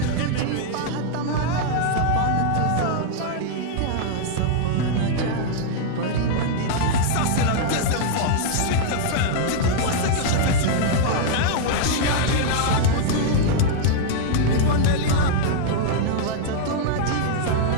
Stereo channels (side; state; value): both; different; correlation -0.01